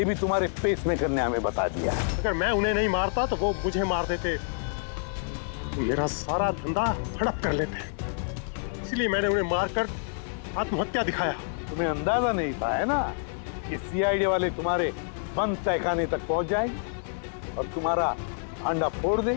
भी तुम्हारे पेसमेकर ने हमें बता दिया। अगर मैं उन्हें नहीं मारता तो वो मुझे मार देते, मेरा सारा धंधा हड़प कर लेते। इसलिए मैंने उन्हें मारकर आत्महत्या दिखाया। तुम्हें अंदाजा नहीं था है ना कि सीआईडी वाले तुम्हारे बंद तहखाने तक पहुंच जाएंगे और तुम्हारा अंडा फोड़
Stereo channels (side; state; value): right; silent; digital silence